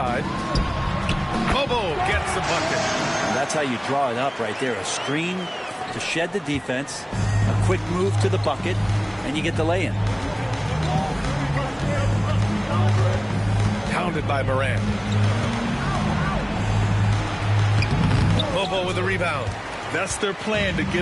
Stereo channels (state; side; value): identical; both; correlation 1.00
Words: Bobo gets the bucket. And that's how you draw it up right there. A screen to shed the defense, a quick move to the bucket, and you get the lay-in. Pounded by Morant. Bobo with a rebound. That's their plan, to